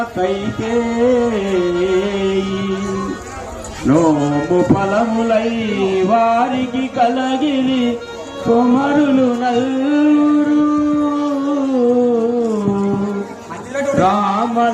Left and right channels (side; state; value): both; identical; correlation 1.00